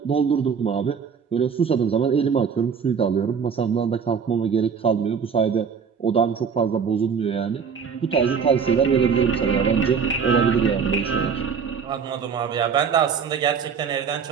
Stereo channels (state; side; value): quieter; left; 6.4 dB